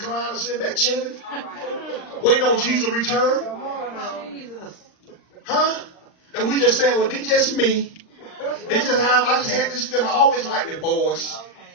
or sitting back chilling? Waiting on Jesus to return? Jesus. Huh? And we just saying, well, they just me. They just I just had this feeling. I always liked the boys.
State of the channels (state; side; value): late; right; 39 ms